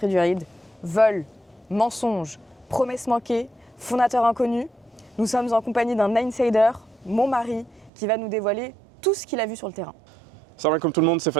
du Eid. Vol, mensonges, promesses manquées, fondateur inconnu. Nous sommes en compagnie d'un insider, mon mari, qui va nous dévoiler tout ce qu'il a vu sur le terrain. Salam alaikum tout le monde, c'est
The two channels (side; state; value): left; drops out; at 7.9 s